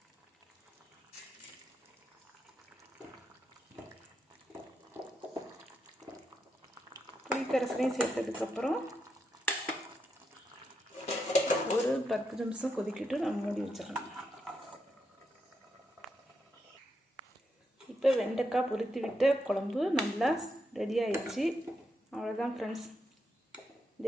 புளிக்கரைசலையும் சேர்த்ததுக்கப்புறம் ஒரு 10 நிமிஷம் கொதிக்கிட்டு நம்ம மூடி வச்சிடலாம். இப்போ வெண்டைக்காய் பொரித்து விட்ட குழம்பு நல்லா ரெடி ஆயிடுச்சு. அவ்வளோதான் ஃப்ரெண்ட்ஸ்.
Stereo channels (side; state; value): both; normal; correlation 0.83